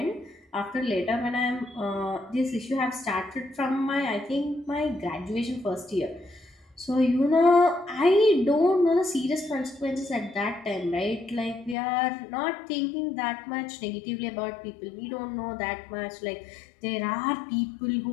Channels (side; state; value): right; drops out; at 11.8 s